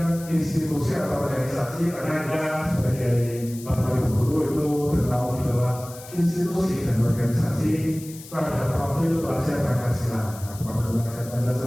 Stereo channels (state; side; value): noise; left; hiss, 17 dB below the sound